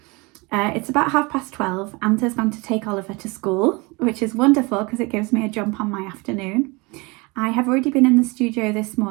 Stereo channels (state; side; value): quieter; left; 26.5 dB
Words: It's about 12:30. Anta's gone to take Oliver to school, which is wonderful because it gives me a jump on my afternoon. I have already been in the studio this